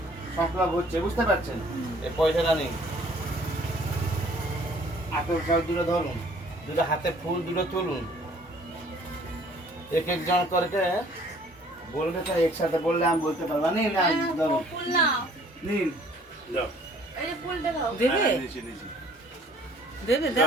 সংক্রাম হচ্ছে, বুঝতে পারছেন? এই পয়সাটা নেই, হাতের জল দুটো ধরুন, দুটো হাতে ফুল দুটো তুলুন, এক একজন করে বলবে তো, একসাথে বললে আমি বলতে পারবো। নিন না, ধরুন, ফুল নাও। নিন। দাও এই যে ফুলটা দাও। দেবে হ্যাঁ, নিচে নিচে দেবে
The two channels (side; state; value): both; normal; correlation 0.57